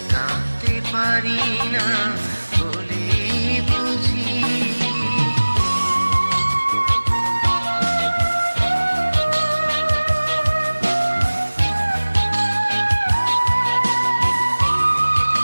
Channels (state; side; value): inverted; both; correlation -1.00